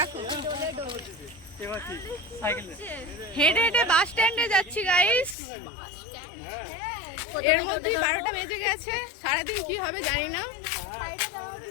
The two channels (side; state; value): right; drops out; at 5.4 s